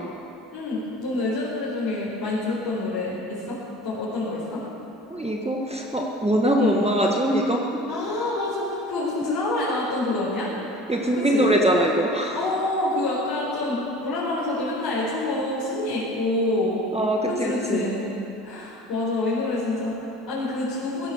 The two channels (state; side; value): normal; both; correlation 0.43